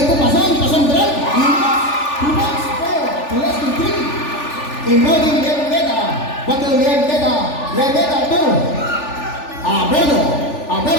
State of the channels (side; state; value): right; late; 3.4 ms